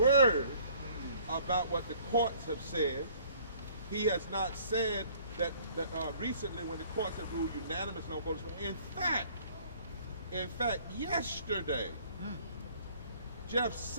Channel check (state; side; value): inverted; both; correlation -0.56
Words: about what the courts have said. He has not said that recently when the courts have ruled unanimous on voters. In fact, yesterday, Jeff